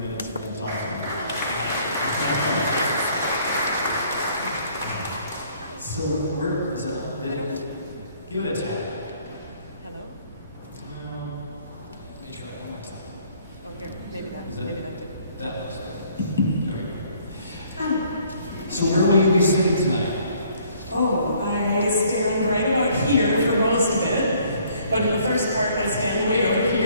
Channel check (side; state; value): both; inverted; correlation -0.61